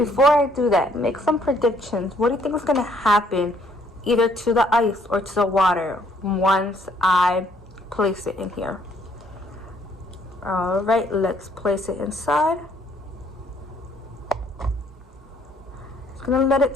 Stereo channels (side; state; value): both; normal; correlation 0.65